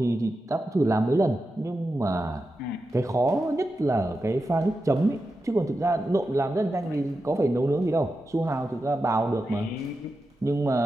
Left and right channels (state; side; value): normal; both; correlation 0.90